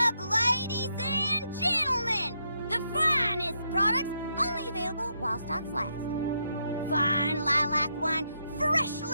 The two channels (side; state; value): both; inverted; correlation -0.80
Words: ladies and gentlemen! The finest products only available while stocks last. Fine lilac wine,